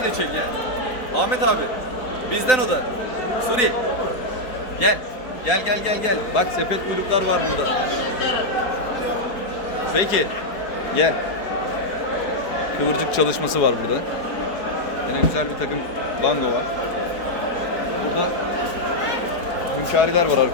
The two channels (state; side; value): late; right; 4.3 ms